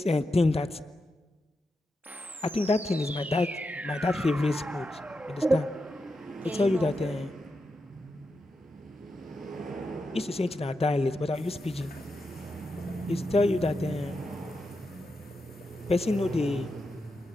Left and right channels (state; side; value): normal; both; correlation 0.87